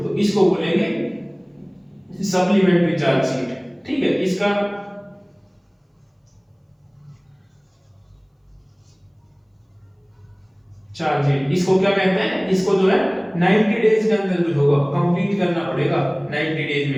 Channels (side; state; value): both; identical; correlation 1.00